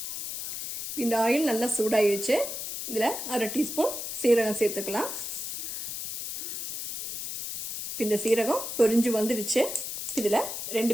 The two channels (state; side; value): noise; left; hiss, 5 dB below the sound